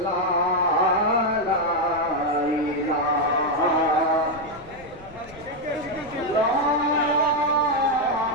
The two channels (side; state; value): left; noise; rumble, 21 dB below the sound